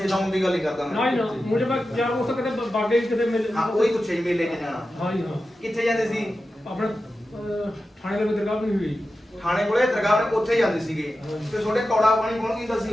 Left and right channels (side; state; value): both; normal; correlation 0.92